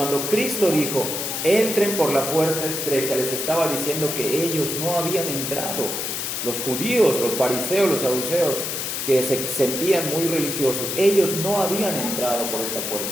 Cristo dijo, entren por la puerta estrecha, les estaba diciendo que ellos no habían entrado. Los judíos, los fariseos, los saduceos, que se sentían muy religiosos, ellos no habían entrado por esta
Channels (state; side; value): noise; left; hiss, 3 dB below the sound